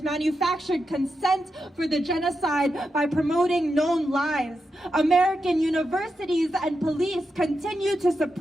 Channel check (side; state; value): both; normal; correlation 0.87